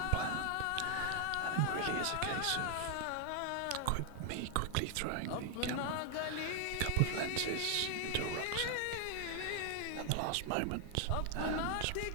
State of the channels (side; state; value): both; different; correlation 0.00